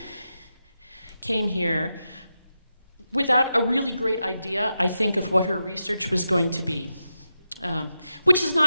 came here without a really great idea, I think, of what her research was going to be, which is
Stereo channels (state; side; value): inverted; both; correlation -0.89